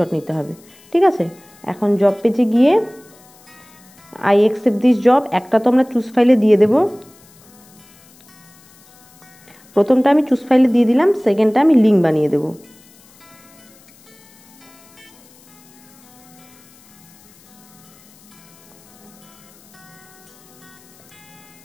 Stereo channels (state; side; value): noise; left; hiss, 27 dB below the sound